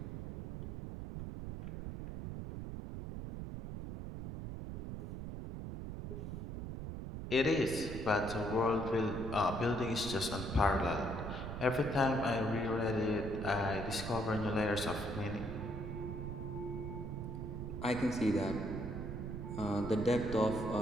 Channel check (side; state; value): right; noise; rumble, 6 dB below the sound